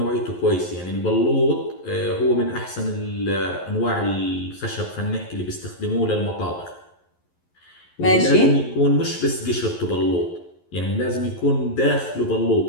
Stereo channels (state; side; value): late; right; 11 ms